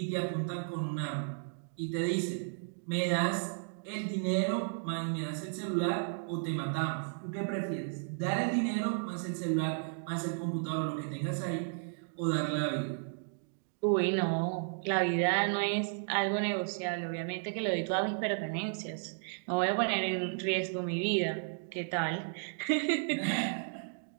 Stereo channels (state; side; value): silent; left; digital silence